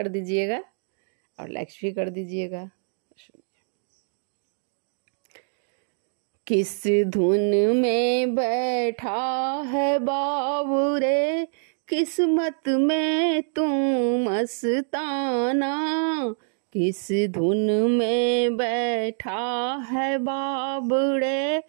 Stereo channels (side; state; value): left; silent; digital silence